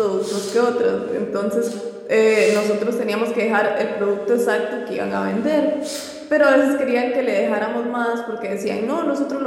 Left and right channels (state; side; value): identical; both; correlation 1.00